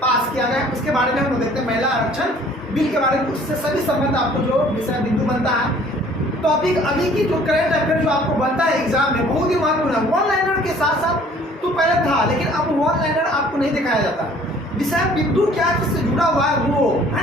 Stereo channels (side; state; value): both; normal; correlation 0.54